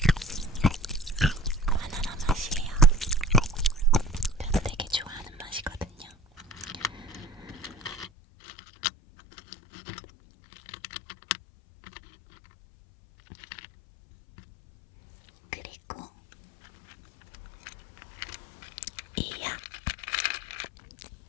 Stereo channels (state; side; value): drops out; right; at 8.1 s